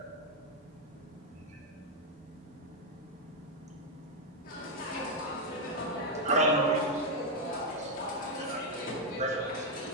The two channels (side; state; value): both; normal; correlation 0.02